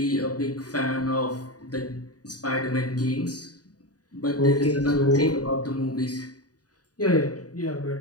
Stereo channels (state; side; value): late; right; 0.68 ms